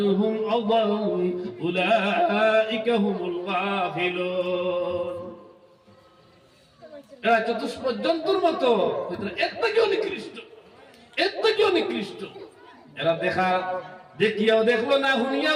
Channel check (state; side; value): identical; both; correlation 1.00